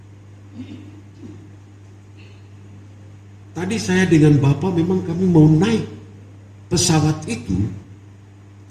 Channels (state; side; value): identical; both; correlation 1.00